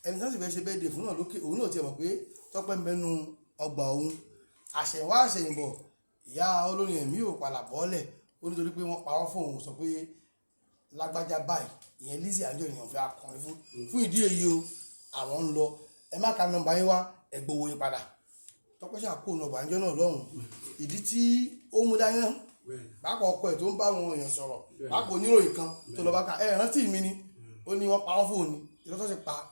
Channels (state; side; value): inverted; both; correlation -1.00